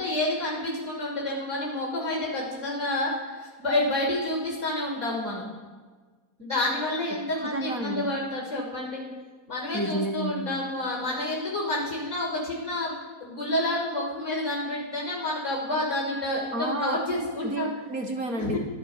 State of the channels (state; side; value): late; left; 4.1 ms